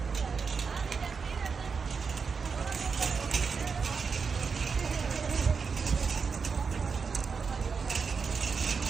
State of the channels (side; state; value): left; quieter; 5.4 dB